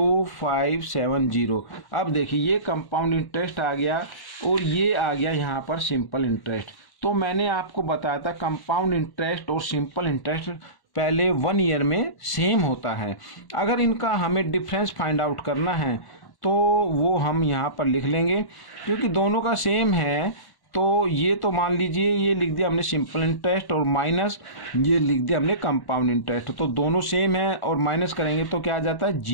अब देखिए ये कंपाउंड इंटरेस्ट आ गया और ये आ गया यहाँ पर सिंपल इंटरेस्ट। तो मैंने आपको बताया था कंपाउंड इंटरेस्ट और सिंपल इंटरेस्ट पहले 1 ईयर में सेम होता है। अगर इनका हमें डिफरेंस फाइंड आउट करना है तो वो हम यहाँ पर लिख लेंगे, क्योंकि दोनों का सेम है। तो ये तो मान लीजिए ये लिख दिया हमने सिंपल इंटरेस्ट और माइनस ये लिख दिया हमने कंपाउंड इंटरेस्ट। तो दोनों सेम है और माइनस करेंगे तो क्या आ जाता है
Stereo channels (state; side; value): late; right; 1.1 ms